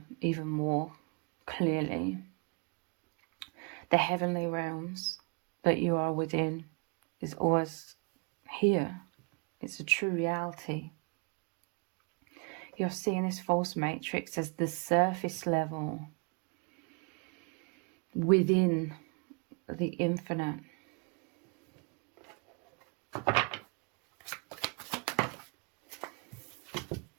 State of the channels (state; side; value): quieter; left; 34.9 dB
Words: even more clearly the heavenly realms that you are within is always here. It's a true reality. You're seeing this false matrix as the surface level within the infinite.